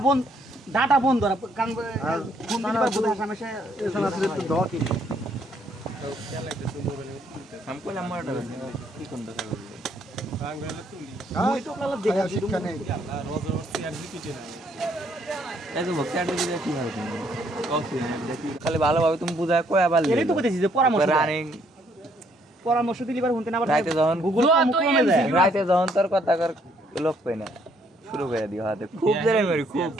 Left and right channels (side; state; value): both; normal; correlation 0.68